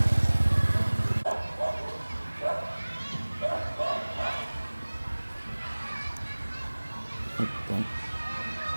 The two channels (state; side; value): inverted; both; correlation -1.00